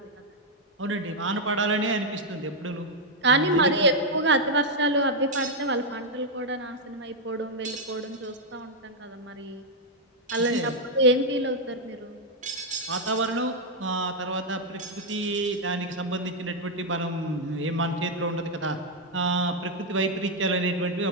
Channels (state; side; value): normal; both; correlation -0.01